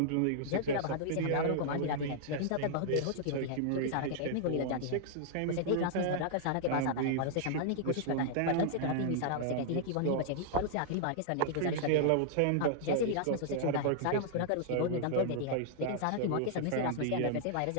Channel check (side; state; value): both; different; correlation -0.01